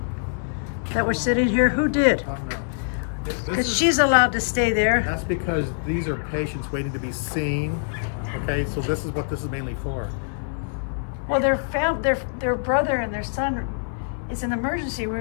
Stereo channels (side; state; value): right; silent; 58 dB below the other